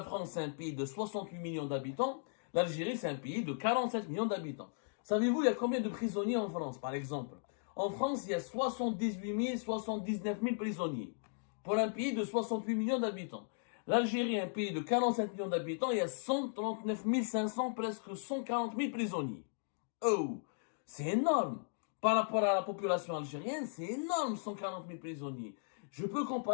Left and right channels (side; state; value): right; silent; digital silence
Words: France, c'est un pays de 68 millions d'habitants. L'Algérie, c'est un pays de 47 millions d'habitants. Savez-vous, il y a combien de prisonniers en France, par exemple? En France, il y a 78 000, 79 000 prisonniers. Pour un pays de 68 millions d'habitants. L'Algérie, un pays de 47 millions d'habitants, il y a 139 500, presque 140 000 prisonniers. Oh, c'est énorme. Par rapport à la population algérienne, c'est énorme, 140 000 prisonniers. Je peux